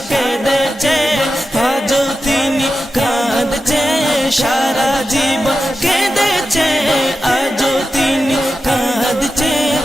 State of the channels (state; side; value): normal; both; correlation 0.92